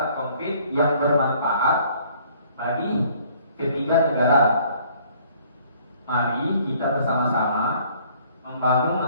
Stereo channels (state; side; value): inverted; both; correlation -0.59